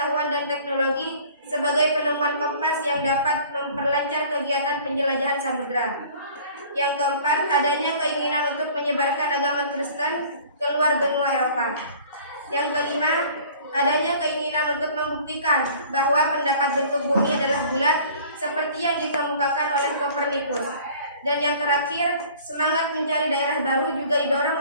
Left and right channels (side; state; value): both; inverted; correlation -0.49